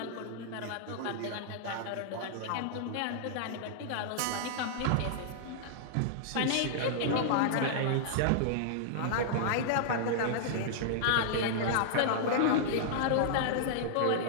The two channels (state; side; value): different; both; correlation -0.01